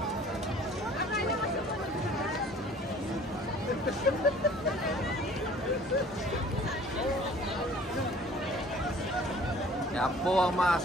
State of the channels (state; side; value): normal; both; correlation 0.51